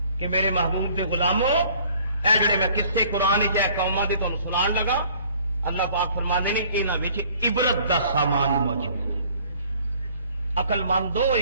کہ میرے محبوب دے غلاموں اے جڑے میں قصے قرآن وچ اے قوماں دے تانوں سنان لگا، اللہ پاک فرماندے نے انہاں وچ عبرت دا سامان موجود ہے۔ عقل مند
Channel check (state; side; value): inverted; both; correlation -0.55